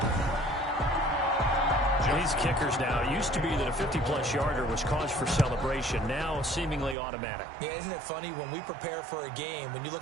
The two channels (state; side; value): drops out; left; at 7.0 s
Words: These kickers now, it used to be that a 50-plus yarder was cause for celebration. Now seemingly automatic. Yeah, isn't it funny when we prepare for a game, when you